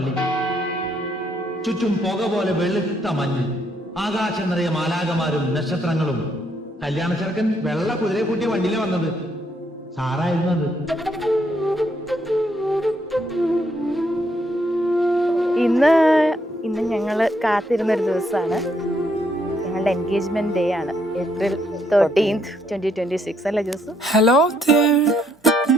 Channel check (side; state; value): both; normal; correlation 0.73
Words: ചുറ്റും പുക പോലെ വെളുത്ത മഞ്ഞ്, ആകാശം നിറയെ മാലാകമാരും നക്ഷത്രങ്ങളും. കല്യാണ ചെറുക്കൻ വെള്ള കുതിരയെ കൂട്ടിയ വണ്ടിയിലെ വന്നത്. സാറായിരുന്നു അത്. ഇന്ന് ഞങ്ങൾ കാത്തിരുന്നൊരു ദിവസമാണ്. ഞങ്ങളുടെ എൻഗേജ്മെന്റ് ഡേ ആണ്. April 13th, 2026 അല്ലേ Jose? Hello dear,